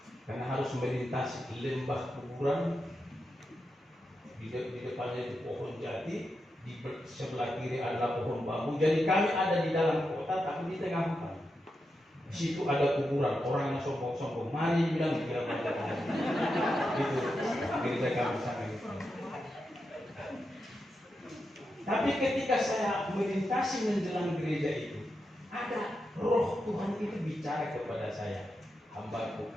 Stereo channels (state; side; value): normal; both; correlation 0.87